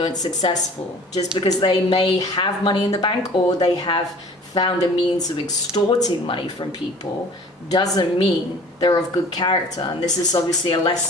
successful, just because they may have money in the bank or they have found a means of extorting money from people, doesn't mean they're of good character. And this is obviously a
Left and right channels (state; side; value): normal; both; correlation 0.47